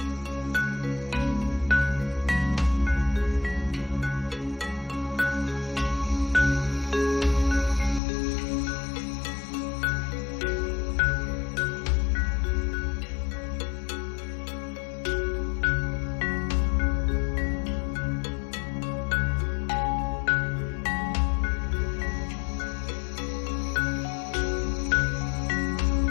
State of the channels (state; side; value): drops out; right; at 8.0 s